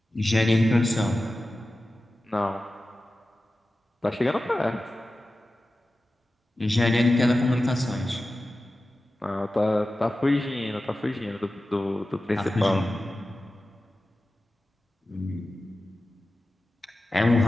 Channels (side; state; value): both; normal; correlation 0.94